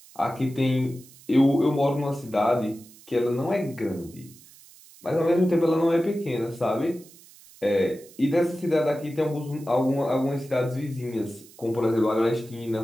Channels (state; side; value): noise; right; hiss, 23 dB below the sound